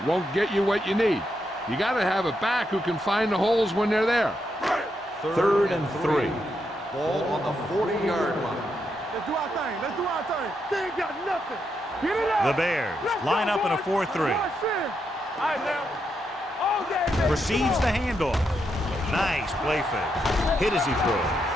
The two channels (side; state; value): both; normal; correlation 0.81